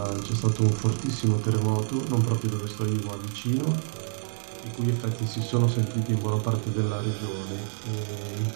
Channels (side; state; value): left; silent; 60 dB below the other